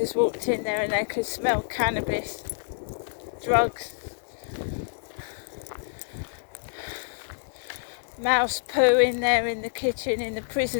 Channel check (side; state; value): right; silent; 60 dB below the other